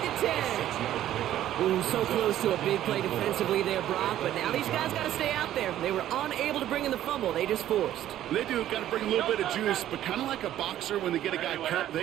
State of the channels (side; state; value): left; quieter; 12.4 dB